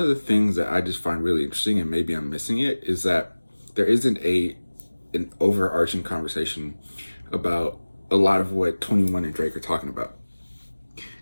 the things that I just find really interesting, and maybe I'm missing it, is that there isn't an overarching conversation about a lot of what 21 and Drake are talking about.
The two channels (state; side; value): inverted; both; correlation -1.00